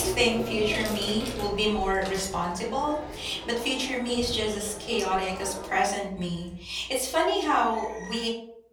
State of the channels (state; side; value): identical; both; correlation 1.00